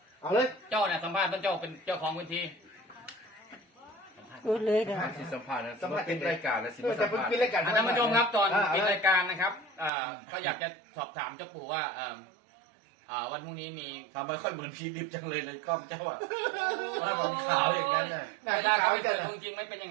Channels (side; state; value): left; drops out; at 9.9 s